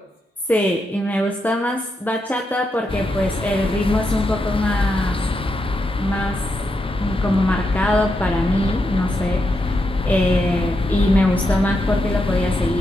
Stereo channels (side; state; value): both; normal; correlation 0.84